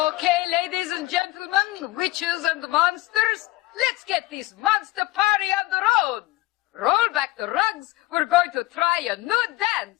ladies and gentlemen, witches and monsters, let's get this monster party on the road. Roll back the rugs. We're going to try a new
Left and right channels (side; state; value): right; quieter; 18.1 dB